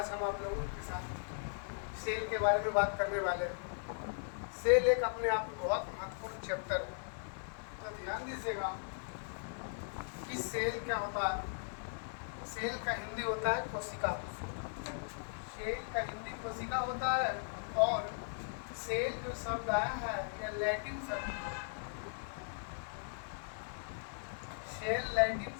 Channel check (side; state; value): right; silent; 52 dB below the other